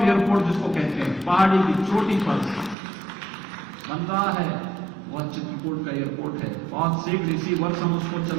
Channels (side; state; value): left; drops out; at 2.8 s